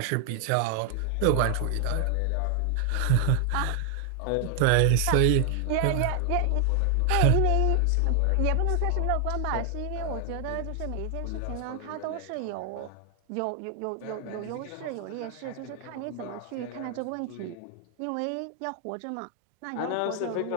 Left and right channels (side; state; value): both; different; correlation 0.00